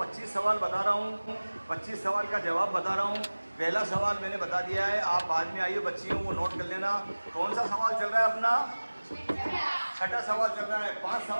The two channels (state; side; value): inverted; both; correlation -1.00